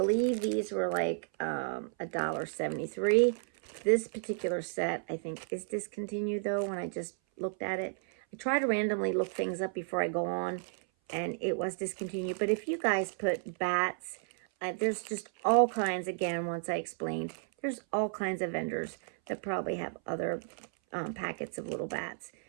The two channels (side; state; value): left; silent; 56 dB below the other